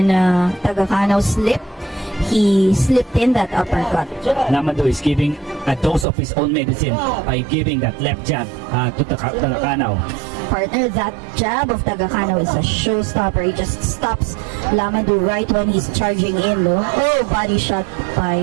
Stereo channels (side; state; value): left; drops out; at 6.1 s